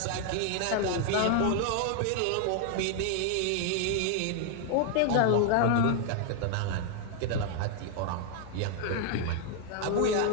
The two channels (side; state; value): both; different; correlation 0.00